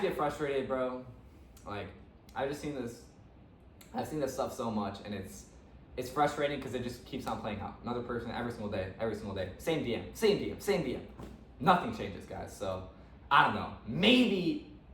get frustrated, bro. Like, I've seen this stuff so much, and it's frustrating because it just keeps on playing out. Another person every single day. Same DM. Nothing changes, guys. So, I don't know.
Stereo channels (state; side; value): identical; both; correlation 1.00